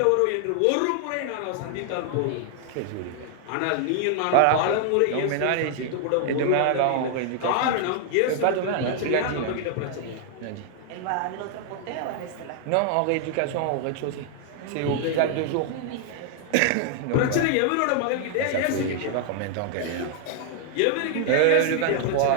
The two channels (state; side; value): different; both; correlation 0.00